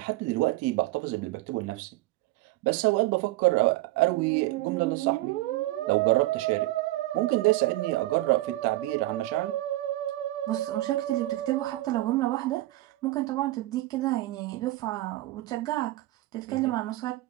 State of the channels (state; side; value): quieter; left; 17.7 dB